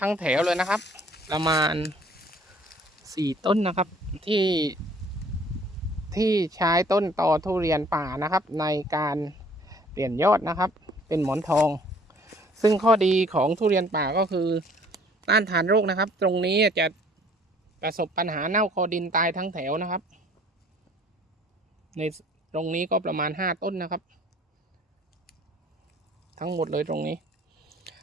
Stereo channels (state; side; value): normal; both; correlation 0.56